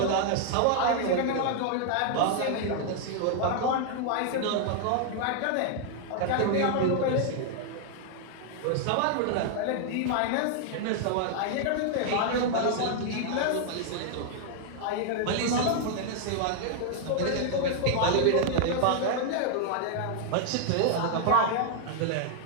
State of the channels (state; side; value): different; both; correlation 0.00